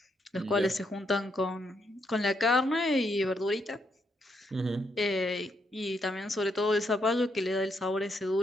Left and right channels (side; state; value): both; normal; correlation 0.77